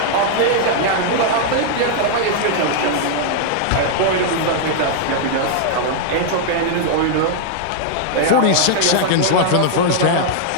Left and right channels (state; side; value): different; both; correlation -0.01